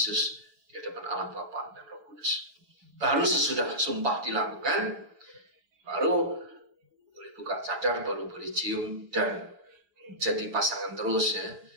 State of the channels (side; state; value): left; late; 7.4 ms